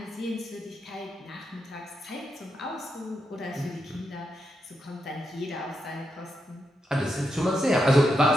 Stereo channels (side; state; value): both; normal; correlation 0.84